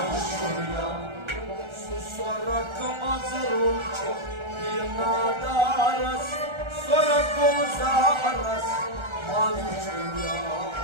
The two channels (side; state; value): left; late; 1.3 ms